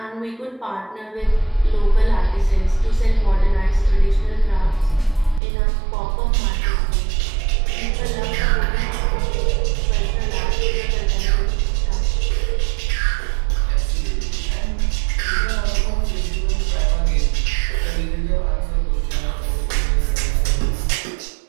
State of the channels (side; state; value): left; drops out; at 5.4 s